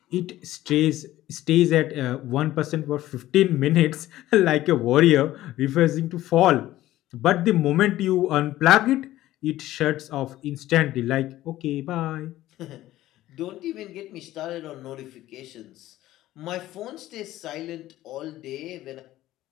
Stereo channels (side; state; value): right; quieter; 15.1 dB